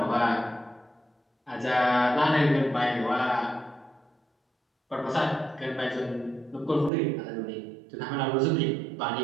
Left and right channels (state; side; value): drops out; left; at 6.9 s